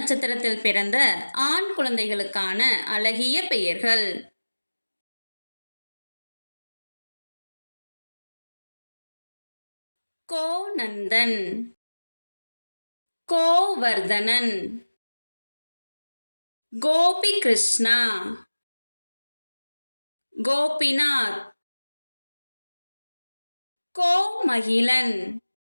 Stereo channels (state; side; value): inverted; both; correlation -1.00